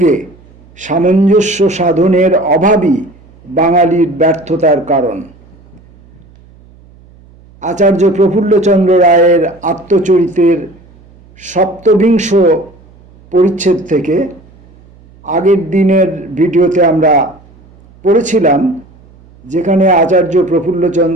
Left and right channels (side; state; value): right; noise; hum, 27 dB below the sound